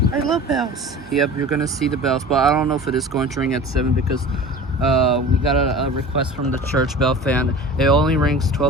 I love bells. Yep, you're gonna see the bells, but I don't know if it is going to ring at 7 because we got a request from the church bell fan. It only rings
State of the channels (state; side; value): normal; both; correlation 0.38